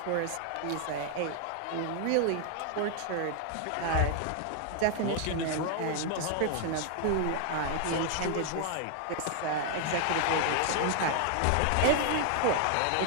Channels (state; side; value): different; both; correlation 0.00